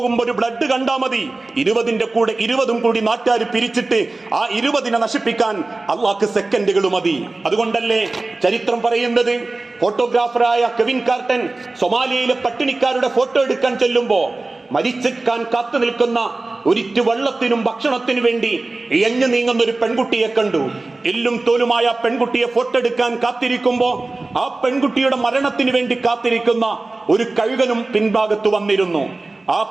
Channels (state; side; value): quieter; left; 3.2 dB